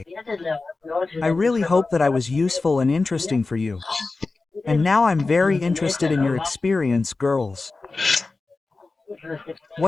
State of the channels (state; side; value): quieter; right; 3.7 dB